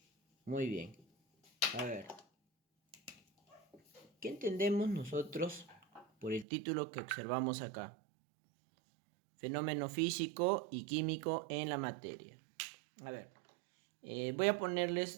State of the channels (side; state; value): left; drops out; at 6.5 s